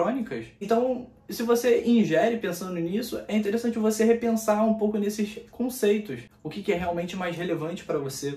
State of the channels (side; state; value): both; identical; correlation 1.00